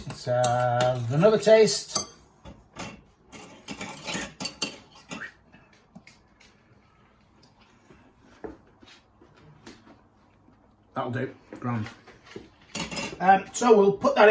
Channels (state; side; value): identical; both; correlation 1.00